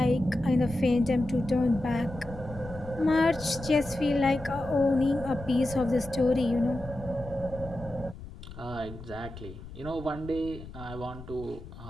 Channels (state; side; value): noise; left; rumble, 14 dB below the sound